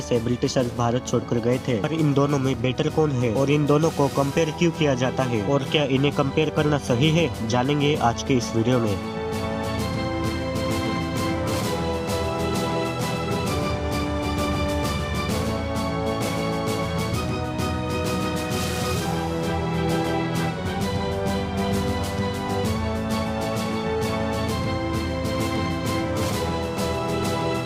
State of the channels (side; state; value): both; identical; correlation 1.00